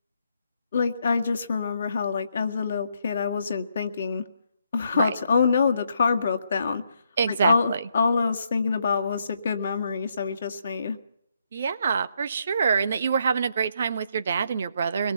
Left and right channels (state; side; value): inverted; both; correlation -0.76